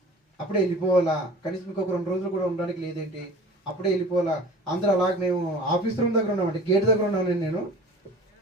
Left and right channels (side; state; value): both; normal; correlation 0.41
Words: అప్పుడే వెళ్ళిపోవాలా, కనీసం ఇంకొక 2 రోజులు కూడా ఉండడానికి లేదేంటి, అప్పుడే వెళ్ళిపోవాలా. అందరూ అలాగే మేము ఆఫీస్ రూమ్ దగ్గర ఉన్నామంటే గేట్ దగ్గర ఉన్నాను నేను.